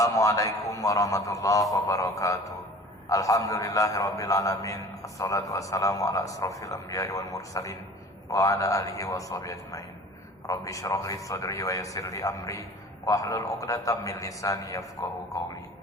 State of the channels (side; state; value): both; normal; correlation 0.44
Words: warahmatullahi wabarakatuh. Alhamdulillahirrabbilalamin. Assalatu wassalamu ala asrafil anbiya'i wal mursalin wa ala alihi wa sahbihi ajmain. Rabbi syrah li sadri wa yassir li amri wahlul 'uqdatam min lisani yafqahu qawli.